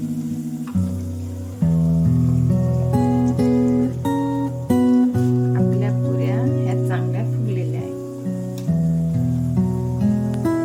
आपल्या पुऱ्या ह्या चांगल्या फुगलेल्या आहेत.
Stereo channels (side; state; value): both; identical; correlation 1.00